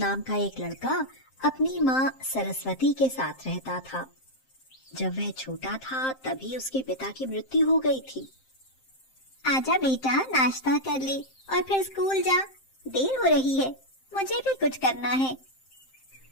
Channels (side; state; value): right; late; 7.6 ms